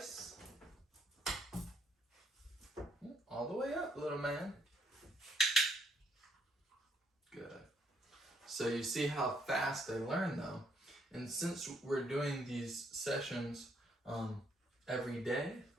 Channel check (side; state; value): both; normal; correlation 0.71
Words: All the way up, little man. Good. So you see how fast they learn, though. And since we're doing these sessions every day